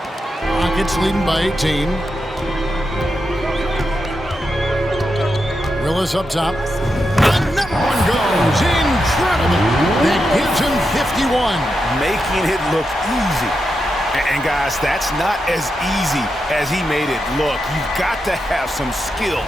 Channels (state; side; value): normal; both; correlation 0.86